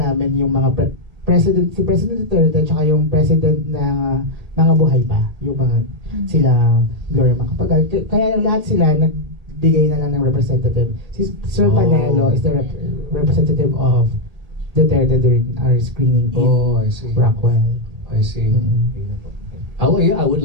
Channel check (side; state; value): left; late; 1.8 ms